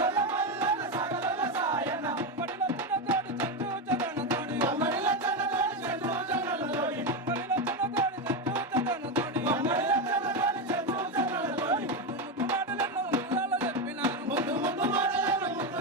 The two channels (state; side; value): normal; both; correlation 0.11